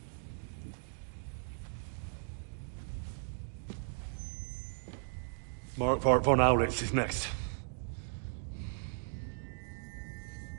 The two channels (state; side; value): silent; left; digital silence